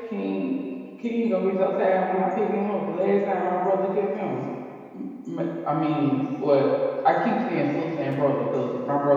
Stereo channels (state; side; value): identical; both; correlation 1.00